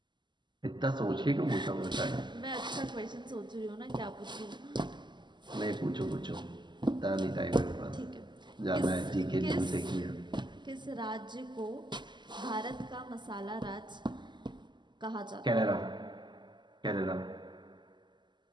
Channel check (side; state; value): left; late; 0.22 ms